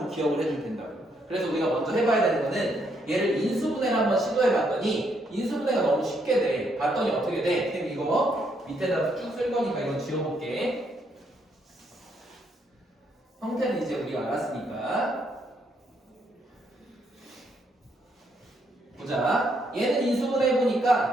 기억을 해줄 텐다고. 그래서 우리가 먼저 해봐야 되는 거는 얘를 인수분해를 한번 시도해봤더니 인수분해가 너무 쉽게 돼. 봤더니 어떻게 돼? 쌤 이거 밑에다 쭉 쓸 거니까 이건 지워볼게. 형태는 이제 우리가 알았으니까. 보자. 얘는 인수분해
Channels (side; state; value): both; normal; correlation 0.74